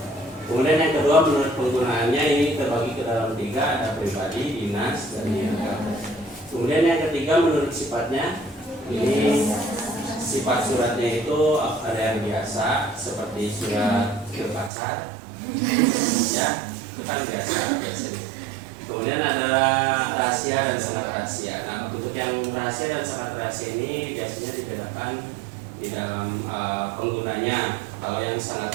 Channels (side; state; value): left; drops out; at 14.7 s